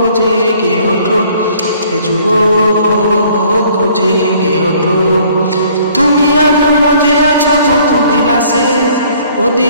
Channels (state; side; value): inverted; both; correlation -0.58